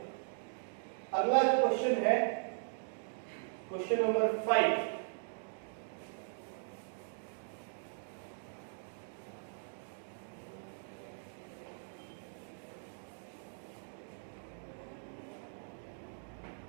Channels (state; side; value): silent; left; digital silence